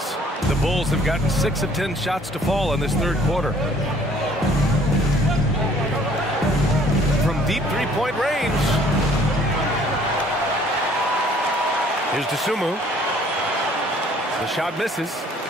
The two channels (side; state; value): both; normal; correlation 0.58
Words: The Bulls have gotten 6 of 10 shots to fall in this third quarter. From deep three-point range. Here's Dosunmu. The shot misses.